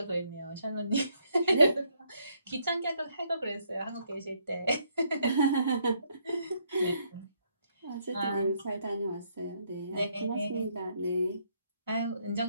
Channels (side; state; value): both; inverted; correlation -0.72